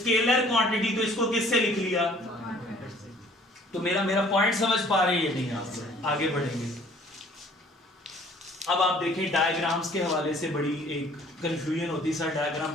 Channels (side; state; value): both; normal; correlation 0.55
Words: क्वांटिटी, तो इसको किससे लिख लिया? तो मेरा पॉइंट समझ पा रहे हैं नहीं? आप आगे बढ़ेंगे। अब आप देखें, डायग्राम्स के हवाले से बड़ी एक कंफ्यूजन होती है, सर